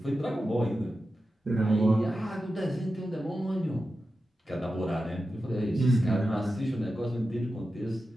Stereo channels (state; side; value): normal; both; correlation 0.92